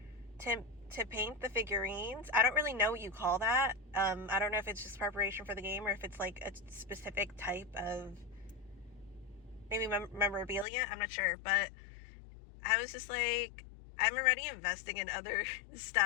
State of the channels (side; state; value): right; drops out; at 10.7 s